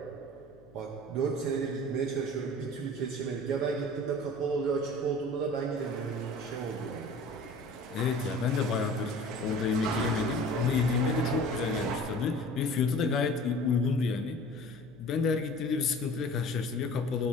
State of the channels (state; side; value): noise; left; hum, 26 dB below the sound